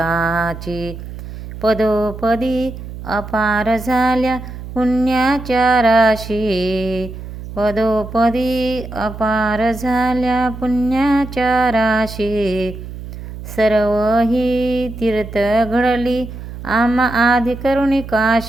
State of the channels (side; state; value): right; noise; hum, 11 dB below the sound